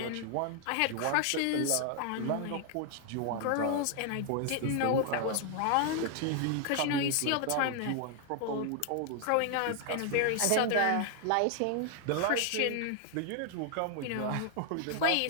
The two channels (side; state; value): both; different; correlation 0.00